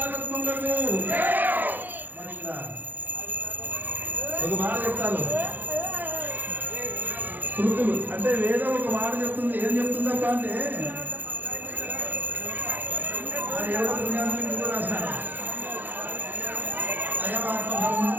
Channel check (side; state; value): left; late; 0.086 ms